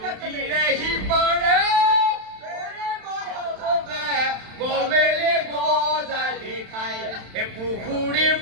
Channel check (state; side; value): late; left; 31 ms